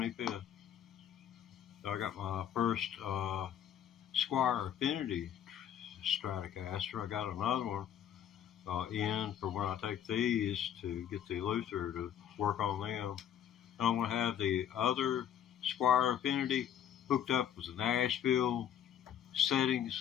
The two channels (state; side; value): quieter; right; 9.8 dB